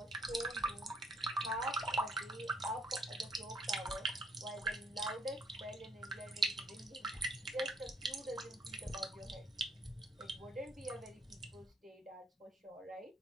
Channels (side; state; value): both; normal; correlation 0.66